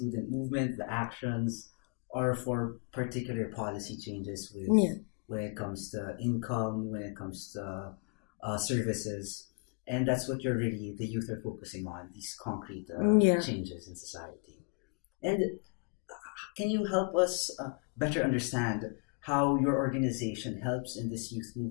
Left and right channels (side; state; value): right; quieter; 35.7 dB